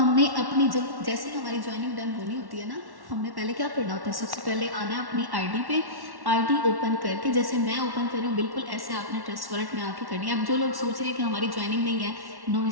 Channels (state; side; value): late; left; 1.1 ms